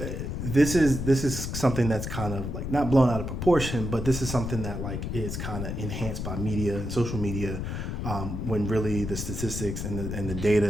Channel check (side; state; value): left; noise; rumble, 4 dB below the sound